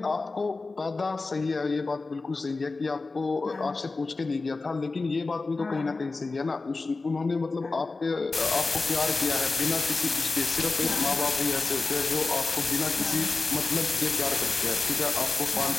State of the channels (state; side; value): quieter; right; 3.7 dB